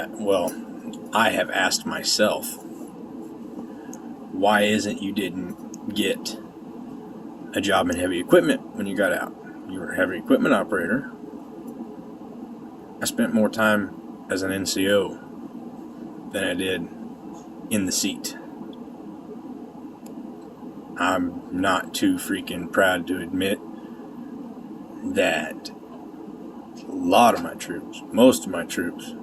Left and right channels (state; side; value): identical; both; correlation 1.00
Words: I have asked myself, why isn't you didn't get a job in heavy equipment when you got out? You were a heavy equipment operator. I spent more time as an NCO than I did in the seat. I'm not too freaking proud to admit that a lot of my troops, most of my troops,